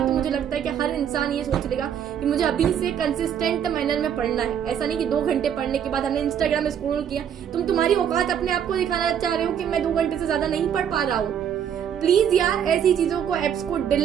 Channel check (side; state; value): left; quieter; 8.8 dB